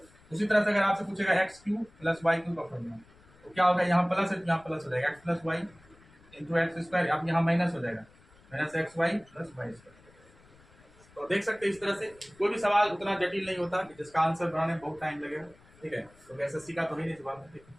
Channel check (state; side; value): noise; left; rumble, 27 dB below the sound